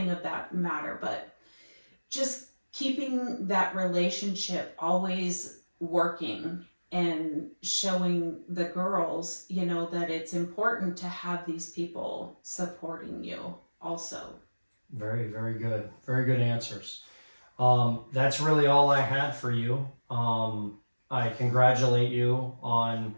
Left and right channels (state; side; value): inverted; both; correlation -1.00